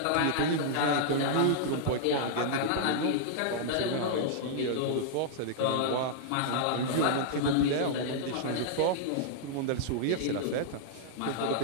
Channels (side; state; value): both; different; correlation -0.01